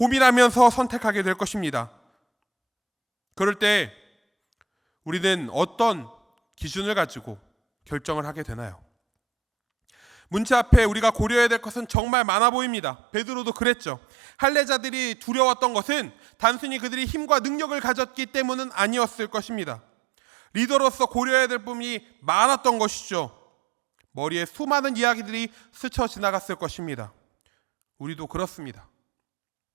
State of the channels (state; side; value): drops out; left; at 12.0 s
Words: 선택하게 될 것입니다. 그럴 때 우리는 어떤 기준을 가지고 결정을 하게 되나요? 문제 앞에 우리가 고려해야 될 것은 정말 많아 보입니다. 베드로도 그랬죠. 할례자들이 두려웠던 것은 단순히 그들이 힘과 능력을 가졌기 때문은 아니었을 것입니다. 리더로서 고려해야 될 부분이 많았던 것이죠. 머리에 수많은 이야기들이 스쳐 지나갔을 것입니다. 우리도 그렇습니다.